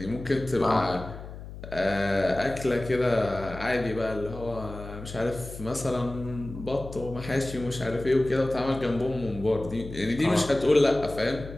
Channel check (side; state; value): left; noise; hum, 12 dB below the sound